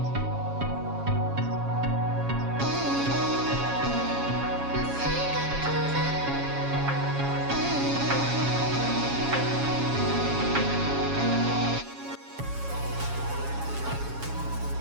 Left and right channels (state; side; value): late; left; 7.2 ms